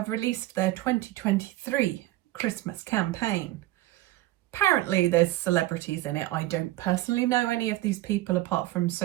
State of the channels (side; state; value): left; quieter; 16.3 dB